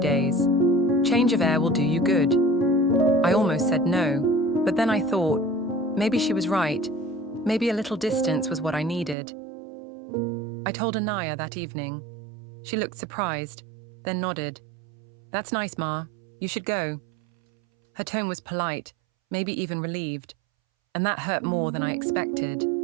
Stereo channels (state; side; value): drops out; left; at 9.2 s